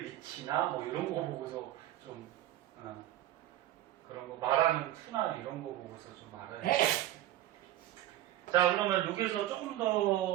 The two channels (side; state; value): left; quieter; 13.7 dB